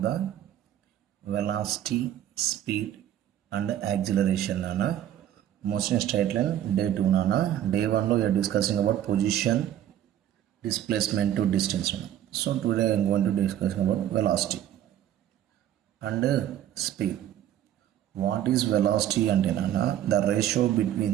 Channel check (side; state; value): left; quieter; 11.4 dB